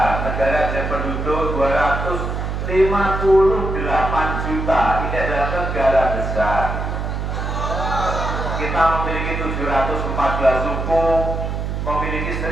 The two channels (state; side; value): noise; right; hum, 3 dB below the sound